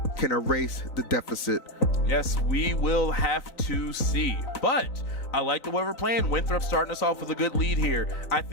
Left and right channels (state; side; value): late; right; 3.9 ms